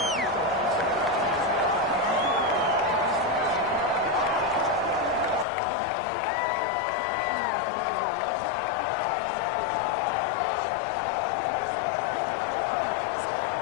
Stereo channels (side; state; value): right; drops out; at 5.5 s